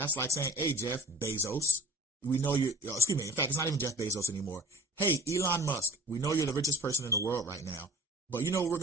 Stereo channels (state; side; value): normal; both; correlation 0.45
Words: like saying, hey, Jeff Bezos, we know you're, excuse me, in fact, it's not even Jeff Bezos anymore. Hey, Elon Musk, we know you're the richest person in the world right now. But you know what we're